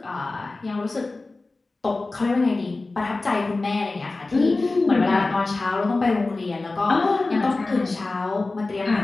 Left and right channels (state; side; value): quieter; right; 3.4 dB